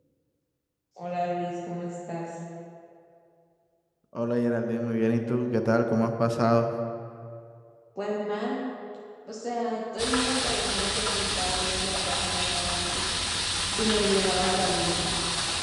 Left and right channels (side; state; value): both; identical; correlation 1.00